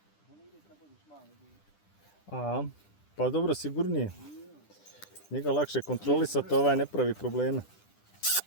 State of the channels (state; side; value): late; right; 10 ms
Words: A, pa dobro, sigurnije. Njega lakše kontrolisati, ovaj ne pravi probleme.